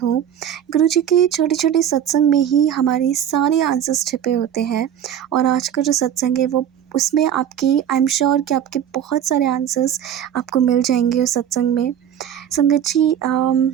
गुरुजी के छोटे छोटे सत्संग में ही हमारे सारे आंसर्स छिपे होते हैं। और आज का जो सत्संग है वो उसमें आपकी आई एम श्योर कि आपके बहुत सारे आंसर्स आपको मिल जाएंगे उस सत्संग में। संगत जी,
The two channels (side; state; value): left; quieter; 9.7 dB